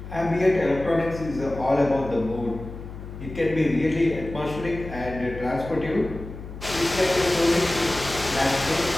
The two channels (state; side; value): noise; left; hum, 12 dB below the sound